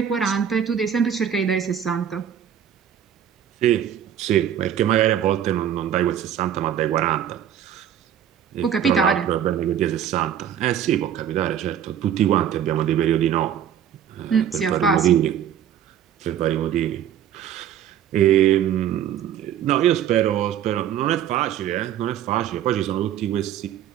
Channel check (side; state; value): left; quieter; 9.8 dB